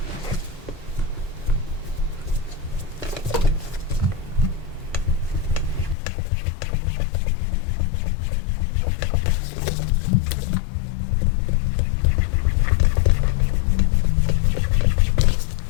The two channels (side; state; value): right; drops out; at 6.0 s